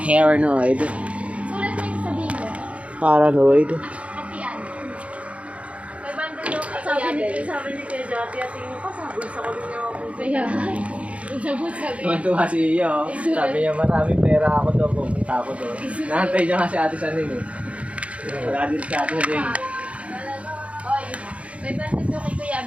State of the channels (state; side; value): late; left; 0.063 ms